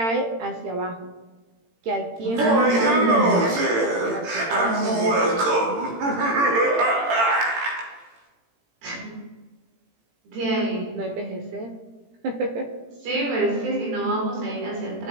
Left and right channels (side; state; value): left; late; 18 ms